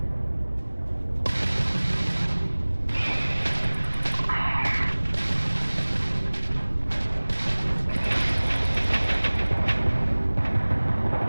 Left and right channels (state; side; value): inverted; both; correlation -1.00